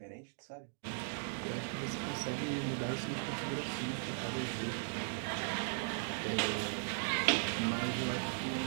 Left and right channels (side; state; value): left; silent; digital silence